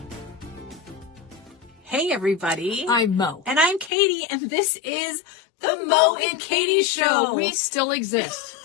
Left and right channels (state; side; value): drops out; right; at 3.9 s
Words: Hey, everybody. I'm Mo. And I'm Katie, and this is The Mo and Katie Show. We still exist.